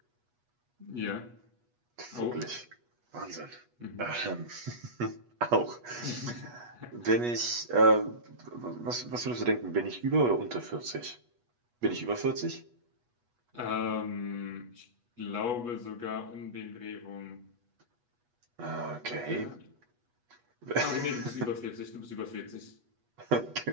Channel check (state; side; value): late; left; 8.3 ms